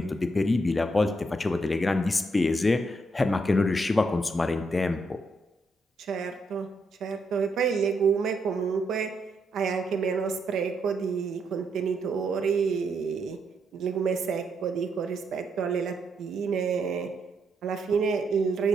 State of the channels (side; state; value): both; normal; correlation 0.78